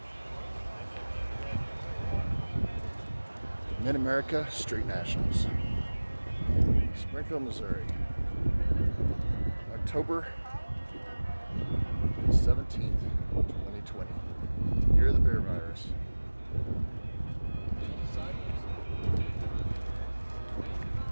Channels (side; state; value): both; inverted; correlation -1.00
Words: Mid-America Street Nationals, Springfield, Missouri, October 17th, 2020, year of the bear virus.